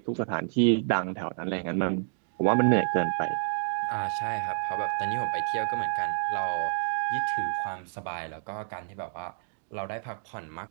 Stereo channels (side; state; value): left; silent; digital silence